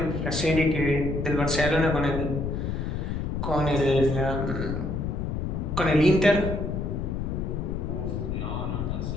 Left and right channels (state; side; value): noise; left; rumble, 2 dB below the sound